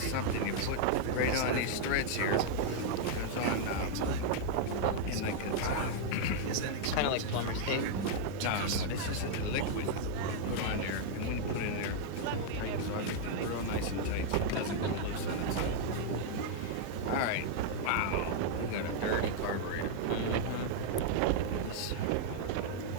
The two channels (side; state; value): both; different; correlation -0.01